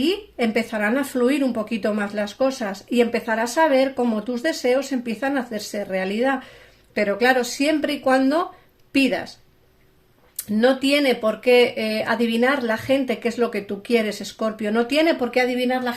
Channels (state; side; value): identical; both; correlation 1.00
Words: empezarán a fluir un poquito más las cosas y empezarás a ver cómo tus deseos empiezan a hacerse realidad. Pero claro, siempre y cuando pidas. No tiene por qué adivinar la gente qué es lo que tú quieres, Escorpio. No tiene por qué adivinar la